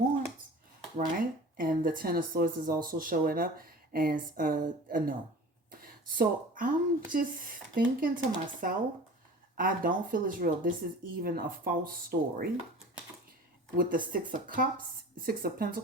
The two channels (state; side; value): normal; both; correlation 0.40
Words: right? And the Ten of Swords is also showing up as a no. So I'm just thinking to myself, I don't feel it's real. This is even a false story. With the Six of Cups, Six of